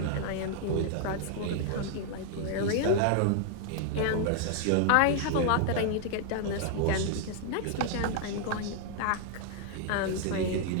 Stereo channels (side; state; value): both; different; correlation 0.00